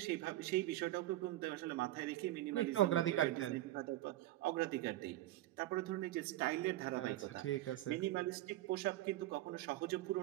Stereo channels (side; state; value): left; quieter; 15.2 dB